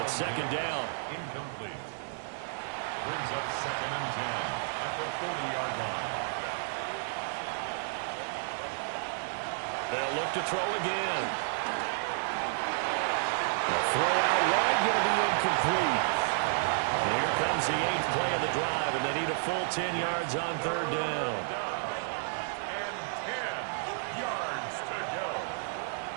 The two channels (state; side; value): silent; left; 57 dB below the other